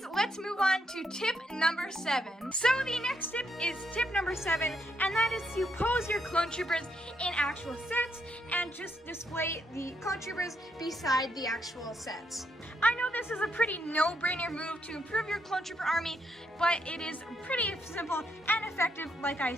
let's move move on to tip number 7. So the next tip is tip number 7, and that is to pose your clone troopers in actual sets and just display the clone troopers beside the actual sets. I know this is a pretty no-brainer move to improve your clone trooper army, but it is pretty simple and effective, like I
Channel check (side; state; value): both; normal; correlation 0.77